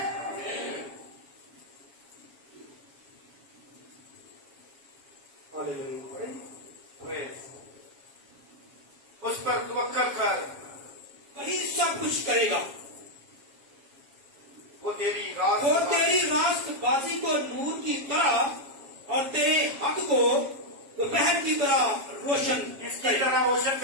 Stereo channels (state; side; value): late; left; 7.3 ms